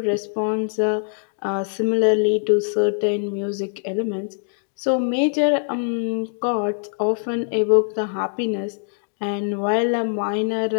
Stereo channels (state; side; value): silent; right; digital silence